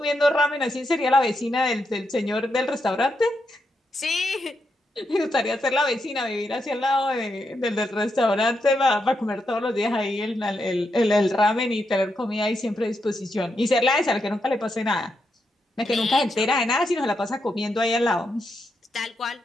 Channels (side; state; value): both; normal; correlation 0.83